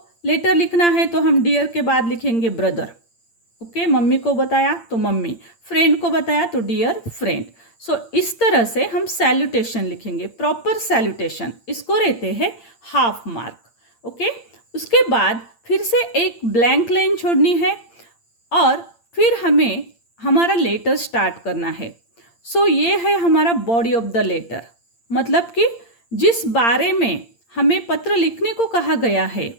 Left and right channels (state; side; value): late; right; 8.7 ms